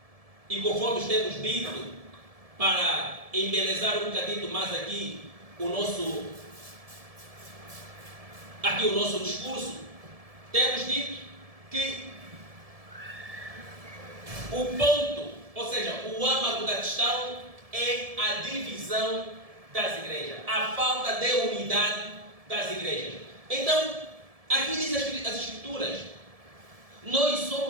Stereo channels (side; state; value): left; late; 1.7 ms